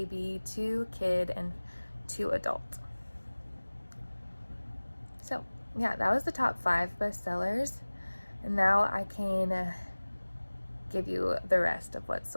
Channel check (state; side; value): inverted; both; correlation -1.00